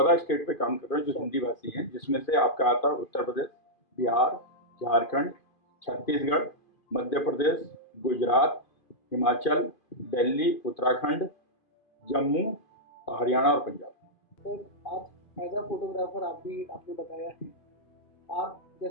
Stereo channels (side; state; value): right; late; 2.5 ms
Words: स्टेट पे काम कर रहे हैं जो हिंदी भाषी हैं, जिसमें से आपका आता है उत्तर प्रदेश, बिहार, झारखंड, छत्तीसगढ़, मध्य प्रदेश, गुजरात, हिमाचल, दिल्ली, उत्तराखंड, जम्मू, हरियाणा और पंजाब। सर, आप एज अ फोटोग्राफर, आप भी आपने बताया है, आप